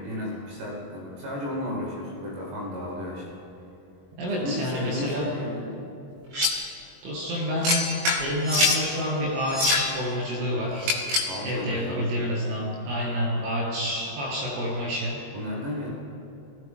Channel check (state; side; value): late; left; 21 ms